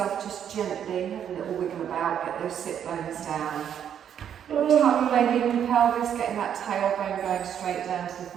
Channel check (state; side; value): quieter; left; 9.0 dB